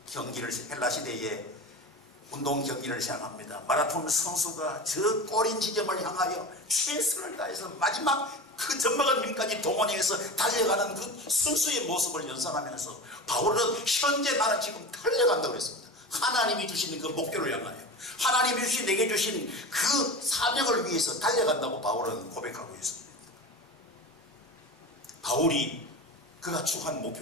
경기를 헬라 시대에 운동 경기를 시작합니다. 마라톤 선수가 저 꼬린 지점을 향하여 최선을 다해서 마지막 그 젖먹은 힘까지 동원해서 달려가는 그 선수의 모습을 연상하면서 바울은 현재 나는 지금 달려간다고 했습니다. 하나님이 주시는 그 목표를 향하여 하나님이 주신 내게 주신 그 사명을 위해서 달려간다고 바울은 고백하고 있습니다. 바울이 그가 추구한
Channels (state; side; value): normal; both; correlation 0.29